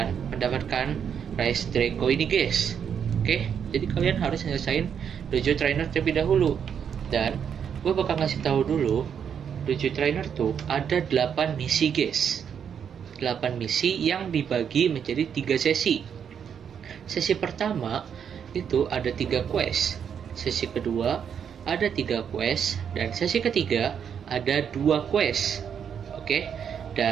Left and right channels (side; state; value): left; quieter; 7.8 dB